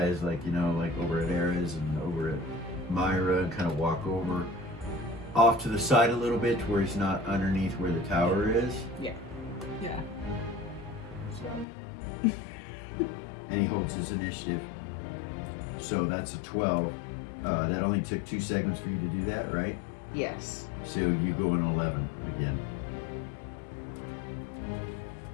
like, you know, like over at Ares and over at Myra, and kind of walk over off to the side a little bit to where he's not underneath where the tower is. Yeah. Yeah. And he holds his initiative. So that's a 12. That only took 2 seconds for you to do that, right? Yes. So you go in 11 again.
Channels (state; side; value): drops out; right; at 11.7 s